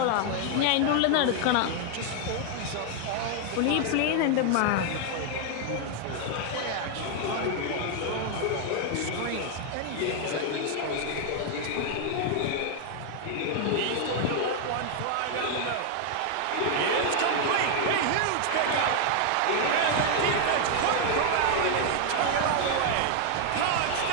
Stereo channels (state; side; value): different; both; correlation 0.00